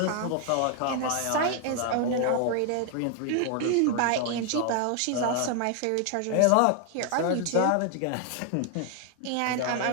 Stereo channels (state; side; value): different; both; correlation 0.00